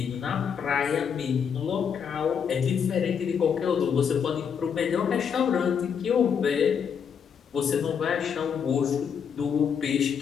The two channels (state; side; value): quieter; right; 7.2 dB